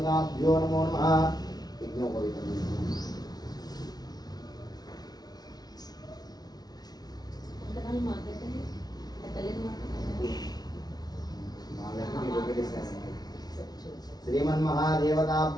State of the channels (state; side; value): late; right; 0.19 ms